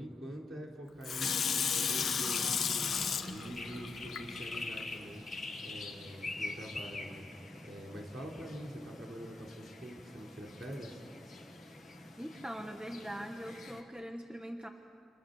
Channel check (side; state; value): right; quieter; 3.8 dB